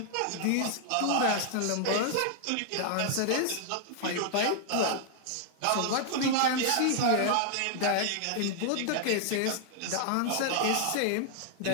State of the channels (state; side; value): different; both; correlation -0.01